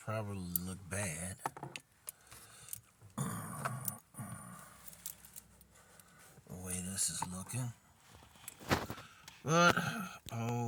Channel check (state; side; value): identical; both; correlation 1.00